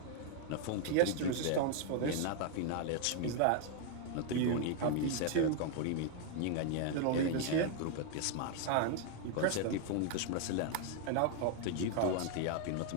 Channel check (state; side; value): different; both; correlation 0.00